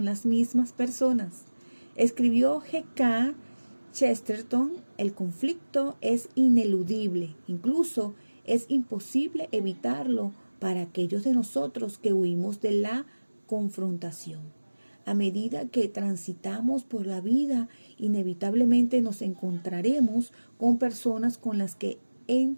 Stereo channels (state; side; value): inverted; both; correlation -1.00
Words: las mismas personas. Escribió G.K. Chesterton: el conflicto es ineludible, incluso es imposible evitarlo para aquellos de nosotros que huimos de la confrontación. A medida que transitamos por la vida, inevitablemente nos encontraremos con personas con las que